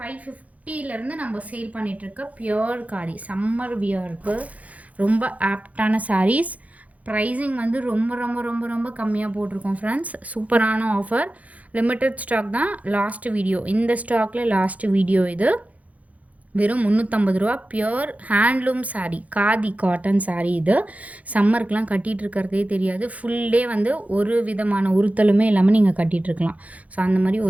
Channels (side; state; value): left; late; 0.070 ms